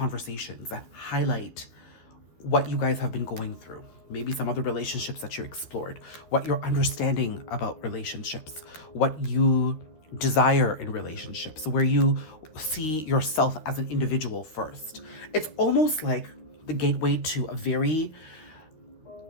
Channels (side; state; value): right; late; 12 ms